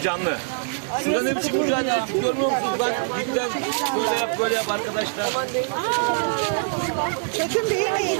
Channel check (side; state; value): left; silent; digital silence